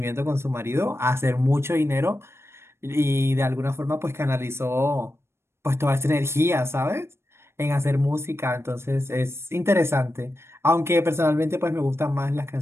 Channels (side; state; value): left; late; 0.12 ms